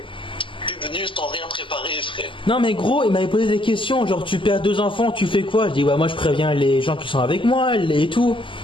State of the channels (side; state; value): right; late; 0.25 ms